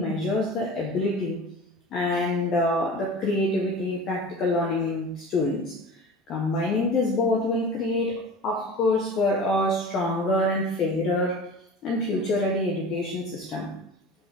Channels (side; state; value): both; normal; correlation 0.36